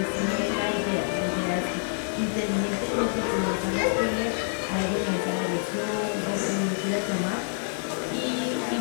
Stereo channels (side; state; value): right; silent; digital silence